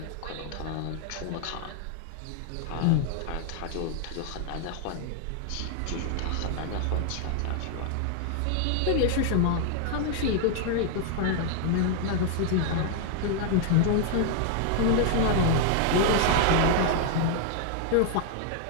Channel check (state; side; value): different; both; correlation 0.00